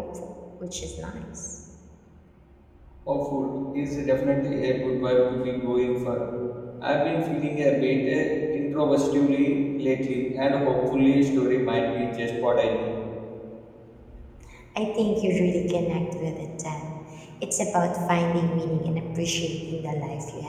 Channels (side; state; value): both; identical; correlation 1.00